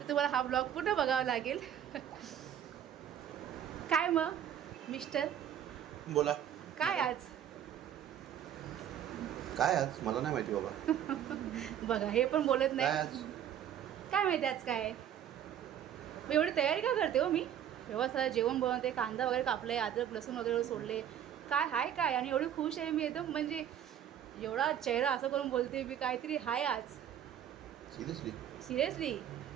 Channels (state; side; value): quieter; left; 9.9 dB